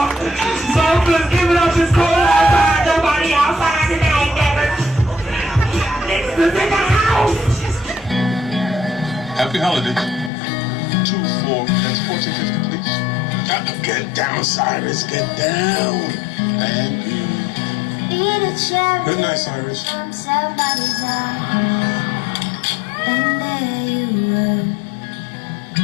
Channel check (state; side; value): drops out; right; at 10.3 s